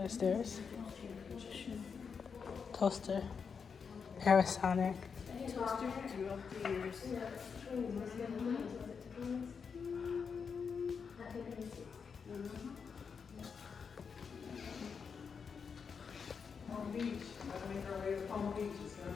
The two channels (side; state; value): right; quieter; 6.0 dB